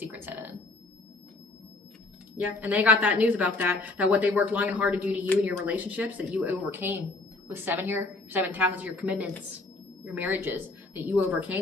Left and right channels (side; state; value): right; quieter; 3.1 dB